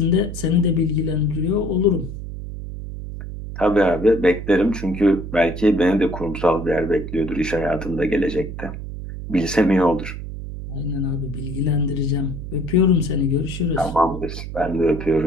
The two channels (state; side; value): noise; right; hum, 8 dB below the sound